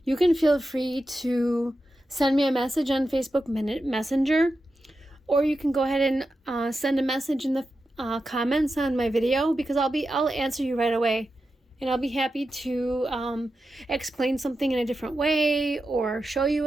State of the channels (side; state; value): both; normal; correlation 0.90